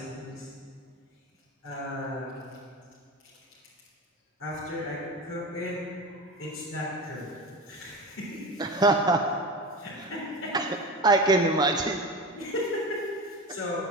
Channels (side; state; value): both; normal; correlation 0.27